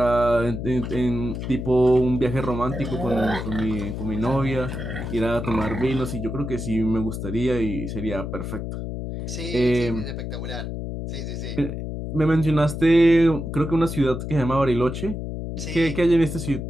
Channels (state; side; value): noise; left; hum, 5 dB below the sound